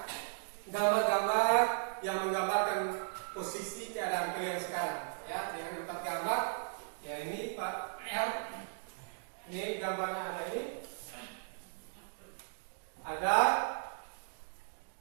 gambar-gambar yang menggambarkan posisi keadaan kalian sekarang ya, dengan 4 gambar ya. Ini Pak R, ini gambarnya ada, ini ada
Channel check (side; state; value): left; silent; digital silence